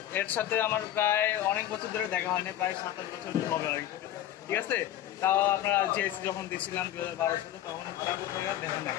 এর সাথে আমার প্রায় অনেক বছর ধরে দেখা হয়নি, প্রায় 7-8 বছর হবে আর কি, ঠিক আছে? তাও আপনারা জিএসসি যখন দিয়েছিলাম 2012 সালে, তখন তারপর থেকে দেখা নাই।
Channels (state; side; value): quieter; right; 12.5 dB